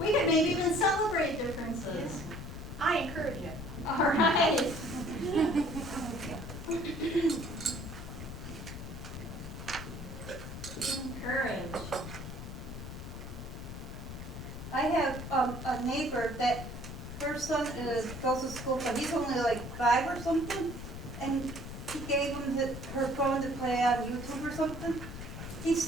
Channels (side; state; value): left; noise; rumble, 9 dB below the sound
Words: We could maybe even celebrate differences. I encourage you. All right. Encourage. I have a neighbor that her son goes to school, but he's only like 5 or something, and he gave him her phone to play on YouTube or something. He